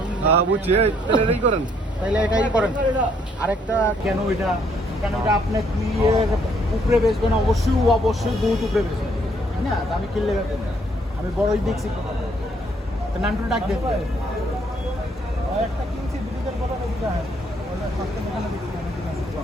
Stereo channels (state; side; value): normal; both; correlation 0.68